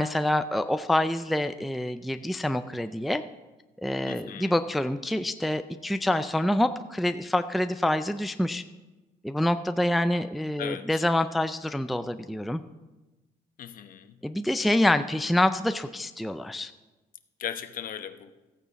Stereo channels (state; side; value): normal; both; correlation 0.94